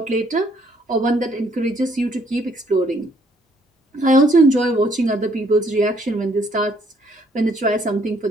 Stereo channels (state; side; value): normal; both; correlation 0.66